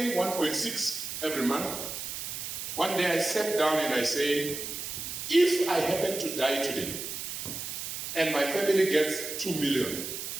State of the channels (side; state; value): right; noise; hiss, 6 dB below the sound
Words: 1.6 every month. One day I sat down and I said, if I happen to die today and my family gets 2 million